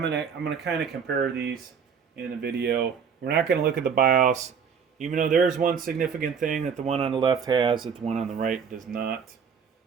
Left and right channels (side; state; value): left; quieter; 6.7 dB